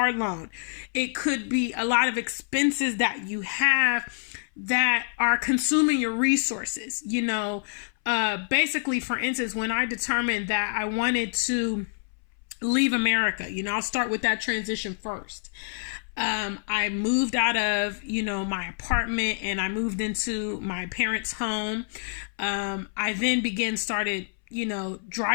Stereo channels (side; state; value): right; silent; 60 dB below the other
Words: loan. It could be a lot of expenses that you have that are consuming your resources. Basically, for instance, when I determined that I wanted to leave America, I'll start with that transition first. I moved out of, my apartment and I moved into my parents' home. I then started